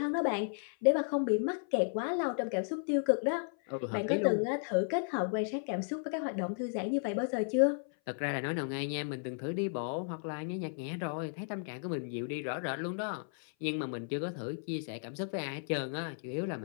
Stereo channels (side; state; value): right; silent; 55 dB below the other